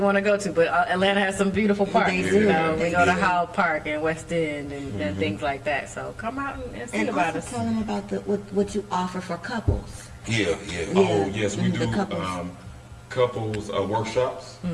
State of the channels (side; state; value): both; identical; correlation 1.00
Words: want to go to, but Atlanta has some beautiful parks. They You do. know, we They go to do. Howell Park and West End and things like that. So come out and see And about also us. tell them about what you offer for couples. Yeah. Oh, yes, we The do couples. couples workshops.